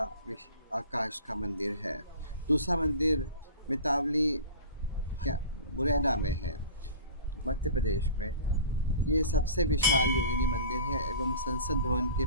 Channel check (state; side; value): inverted; both; correlation -0.39